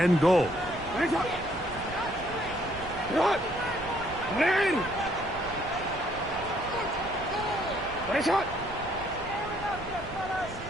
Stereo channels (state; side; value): noise; right; rumble, 14 dB below the sound